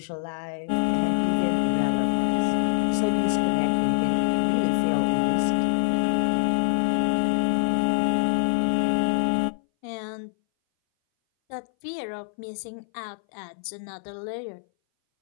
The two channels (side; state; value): right; silent; 60 dB below the other